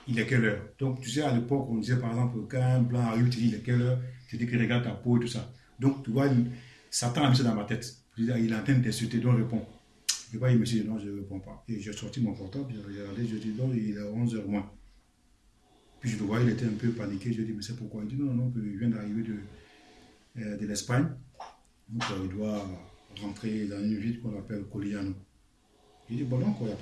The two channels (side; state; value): both; identical; correlation 1.00